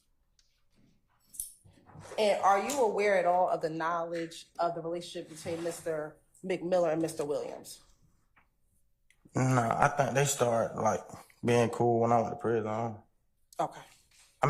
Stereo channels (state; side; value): identical; both; correlation 1.00